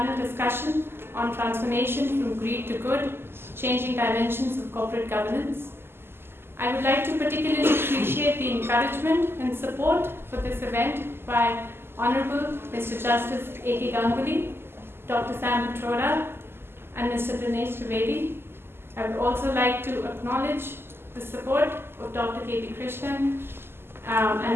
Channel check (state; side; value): late; left; 0.11 ms